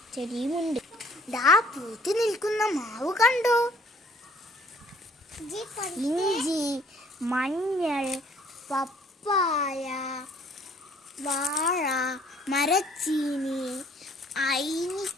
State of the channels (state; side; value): normal; both; correlation 0.59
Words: ചെടിയുമുണ്ട്. പൂത്ത് നിൽക്കുന്ന മാവ് കണ്ടോ? ഇഞ്ചി, മഞ്ഞൾ, പപ്പായ, വാഴ, മരച്ചീനി, അയിനി